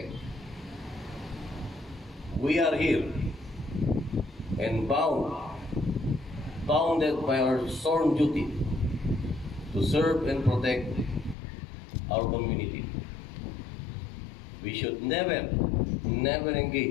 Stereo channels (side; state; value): right; drops out; at 11.4 s